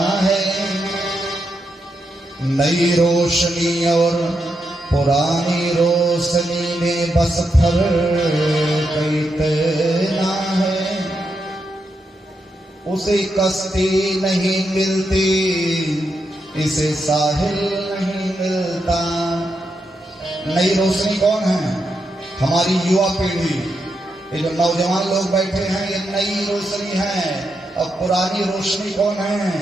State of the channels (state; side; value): normal; both; correlation 0.83